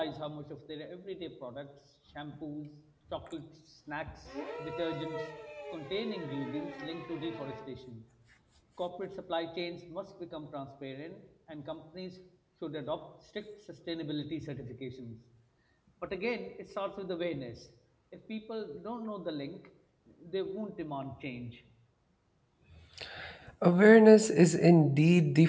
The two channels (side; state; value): both; identical; correlation 1.00